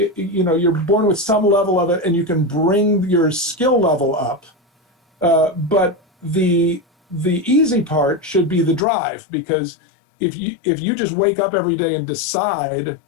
know, you're born with some level of it and you can bring your skill level up. But the easy part should be the drive, because if you just wake up every day and decide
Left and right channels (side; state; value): right; drops out; at 8.8 s